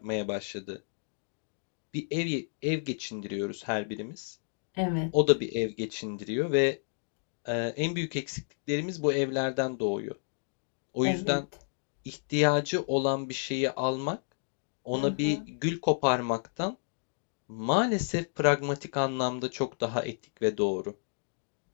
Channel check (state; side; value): silent; right; digital silence